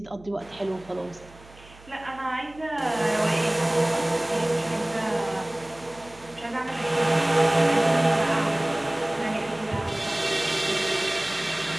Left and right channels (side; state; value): right; noise; hum, 23 dB below the sound